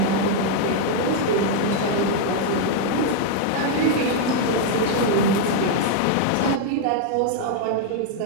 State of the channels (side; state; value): both; different; correlation 0.00